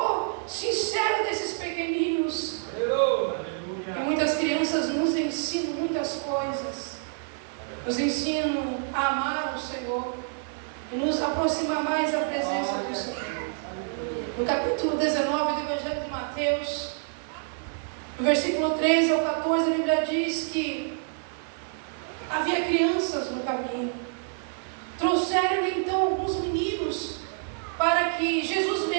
sincero desses pequeninos. E muitas crianças nos ensinam muitas coisas. Nos ensinam a amar o Senhor e nos aproximar mais da presença do Senhor. No capítulo 19 do Evangelho de Mateus, no versículo 13 ao 14, a Bíblia diz que havia crianças no caminho. Trouxeram então alguns meninos para que Jesus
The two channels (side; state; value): left; silent; 60 dB below the other